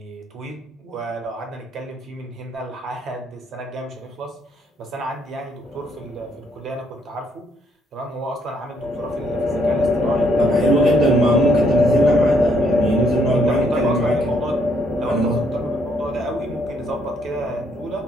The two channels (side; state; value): both; normal; correlation 0.71